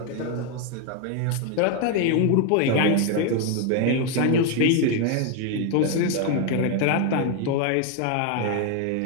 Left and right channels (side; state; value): both; different; correlation 0.01